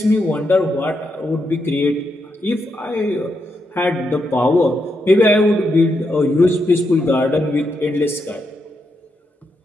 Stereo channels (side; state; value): both; normal; correlation 0.82